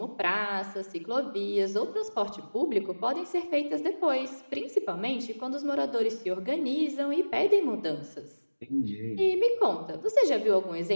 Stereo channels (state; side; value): inverted; both; correlation -1.00